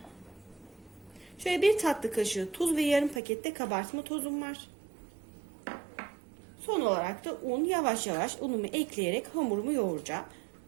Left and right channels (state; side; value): drops out; left; at 3.2 s